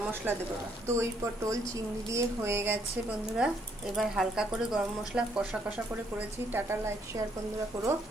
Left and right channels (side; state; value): both; normal; correlation 0.69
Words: মশলা দেবো। দই পটল চিংড়ি দিয়ে হয়ে গেছে বন্ধুরা। এবার হালকা করে গরম মশলা কষা কষা করে করেছি। টাটা, লাইক শেয়ার বন্ধুরা করো।